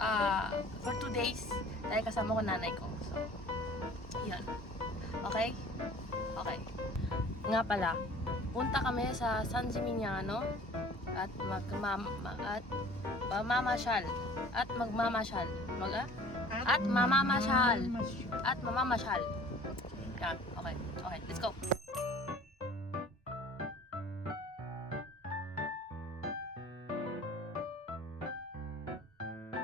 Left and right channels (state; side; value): normal; both; correlation 0.48